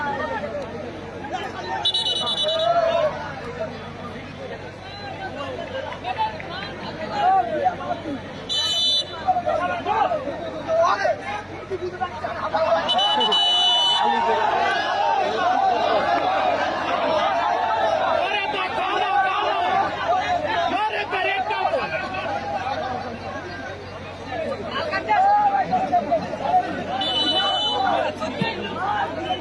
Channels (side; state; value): both; identical; correlation 1.00